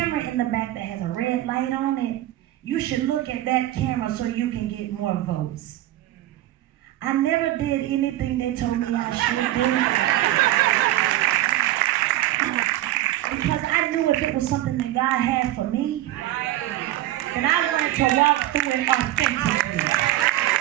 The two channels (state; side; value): quieter; left; 14.6 dB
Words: in the back that has a red light on it. You should look at that camera so you can get more votes." I never did anything they told me I should do. Because I knew if it was something that God had for me, then I wanted to walk through it authentically.